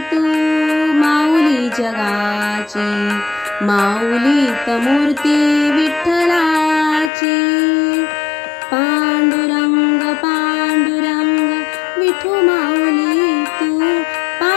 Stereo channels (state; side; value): drops out; right; at 7.1 s